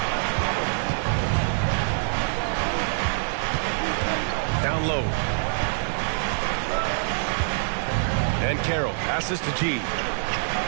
down low. And Carroll passes to G.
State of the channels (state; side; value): silent; left; digital silence